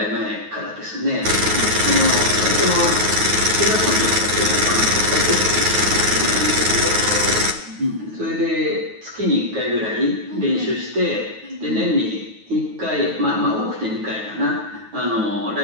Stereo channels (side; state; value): left; late; 9.4 ms